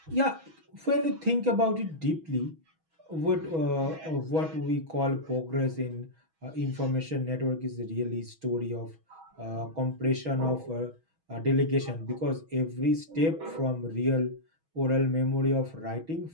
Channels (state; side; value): late; left; 6.2 ms